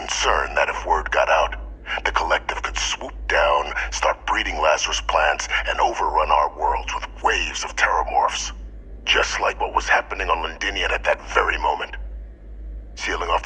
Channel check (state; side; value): identical; both; correlation 1.00